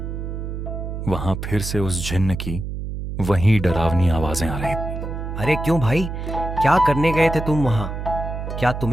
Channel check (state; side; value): noise; right; hum, 6 dB below the sound